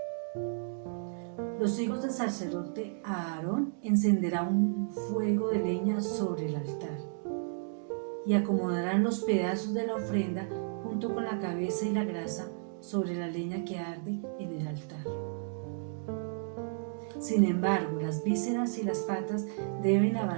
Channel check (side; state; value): left; silent; digital silence